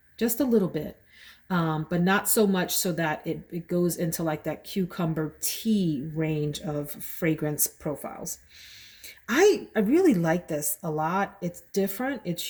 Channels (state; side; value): identical; both; correlation 1.00